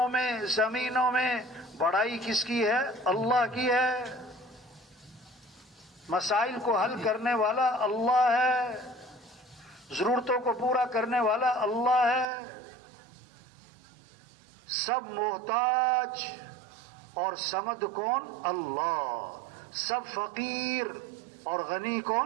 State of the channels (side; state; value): left; drops out; at 12.2 s